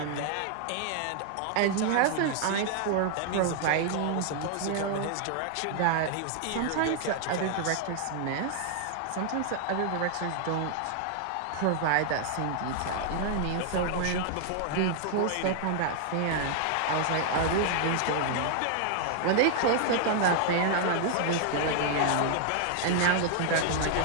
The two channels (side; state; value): both; different; correlation 0.00